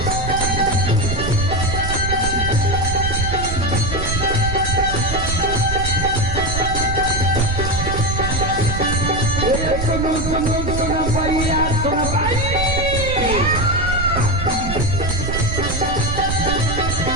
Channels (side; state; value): right; noise; rumble, 3 dB below the sound